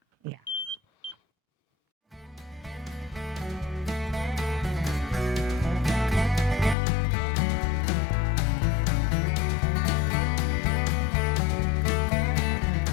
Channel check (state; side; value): drops out; right; at 6.8 s